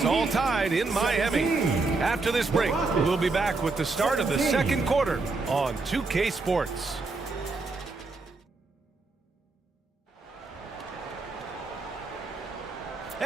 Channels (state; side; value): quieter; left; 3.8 dB